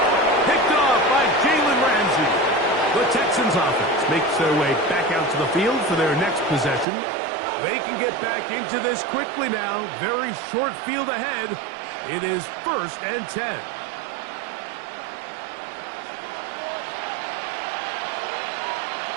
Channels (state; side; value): drops out; left; at 6.9 s